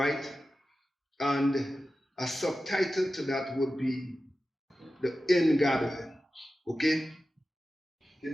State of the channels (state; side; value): normal; both; correlation 0.93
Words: And a subtitle to that would be The Ingathering. Okay?